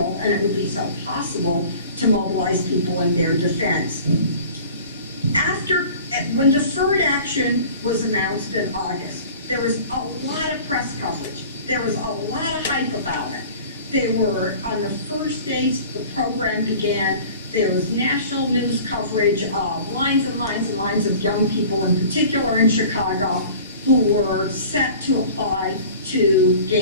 and it would be so possible to mobilize people in their defense. When deferred action was announced in August, there was a lot of press coverage. There was a lot of hype about it. They were, on the first days the program began, there was national news coverage of lines and lines and lines of young people, in particular in Chicago, who were set to apply to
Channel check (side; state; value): both; inverted; correlation -0.44